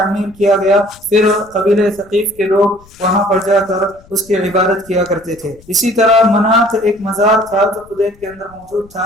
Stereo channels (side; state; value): left; noise; rumble, 26 dB below the sound